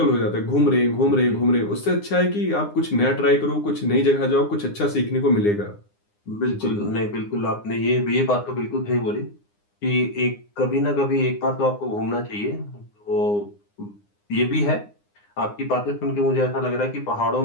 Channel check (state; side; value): late; right; 9.8 ms